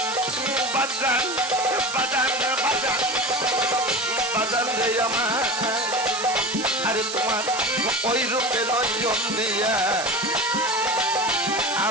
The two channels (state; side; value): noise; right; hiss, 7 dB below the sound